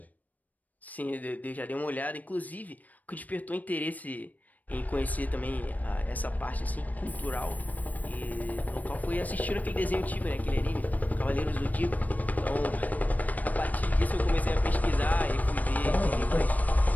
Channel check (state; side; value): late; right; 0.078 ms